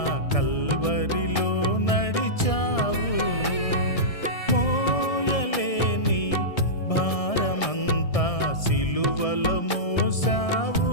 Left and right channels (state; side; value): late; right; 1.6 ms